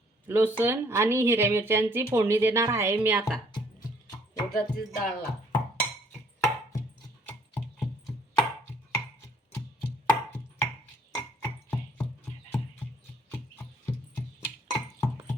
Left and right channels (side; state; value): both; normal; correlation 0.62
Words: लसूण आणि हिरव्या मिरच्यांची फोडणी देणार आहे मी आता उडदाची डाळला.